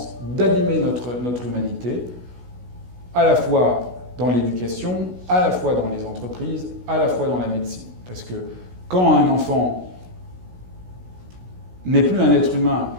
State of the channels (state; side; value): late; left; 16 ms